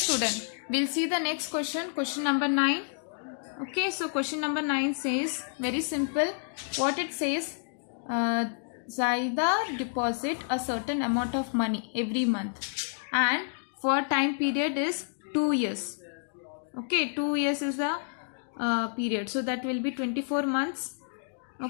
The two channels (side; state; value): right; silent; digital silence